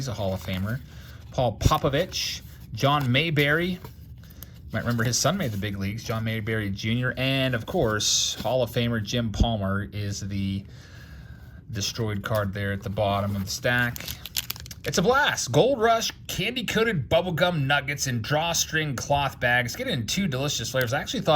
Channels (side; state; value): both; identical; correlation 1.00